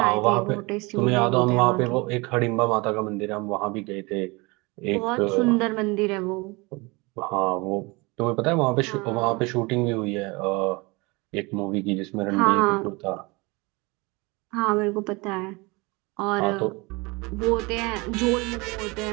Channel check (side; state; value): left; quieter; 25.9 dB